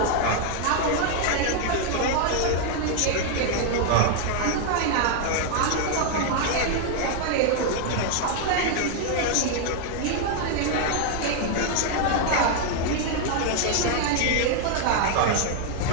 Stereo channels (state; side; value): different; both; correlation 0.00